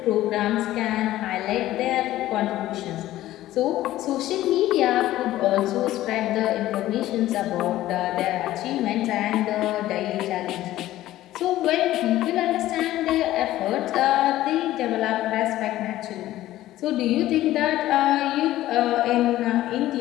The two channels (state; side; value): quieter; right; 14.8 dB